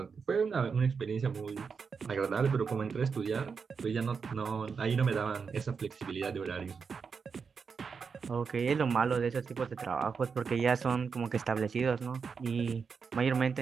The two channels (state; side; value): quieter; left; 5.7 dB